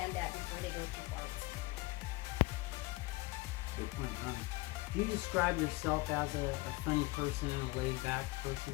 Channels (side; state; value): right; quieter; 22.1 dB